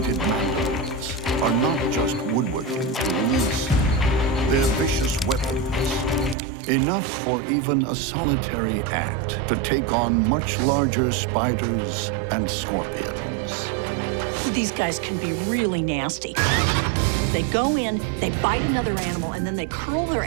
mandibles are not just woodworking tools. They're vicious weapons, enough for even a solitary ant to take on much larger spiders and scorpions. These guys can be really nasty. They go in, they bite another animal, and then they curl their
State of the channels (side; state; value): left; drops out; at 6.4 s